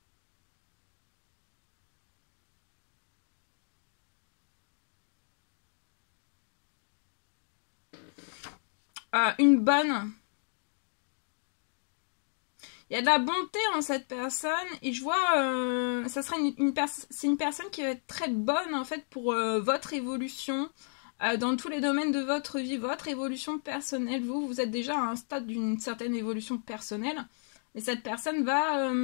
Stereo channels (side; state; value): right; silent; digital silence